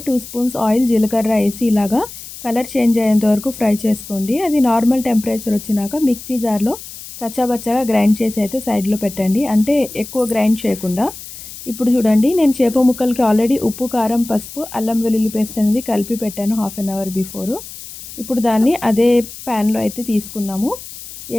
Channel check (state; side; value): noise; left; hiss, 14 dB below the sound